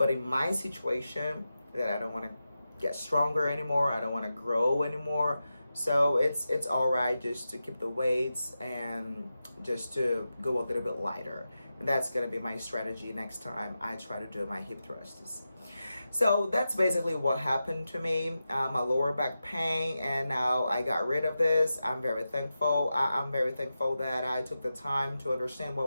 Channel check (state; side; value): inverted; both; correlation -0.91